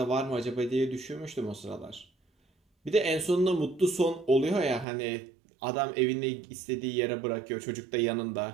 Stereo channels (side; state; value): left; drops out; at 4.9 s